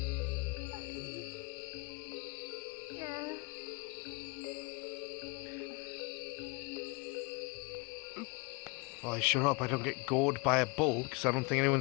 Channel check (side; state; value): right; quieter; 29.7 dB